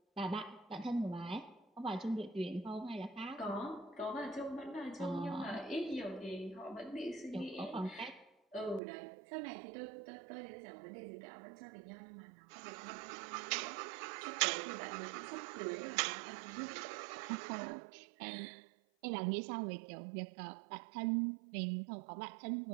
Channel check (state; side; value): drops out; left; at 8.8 s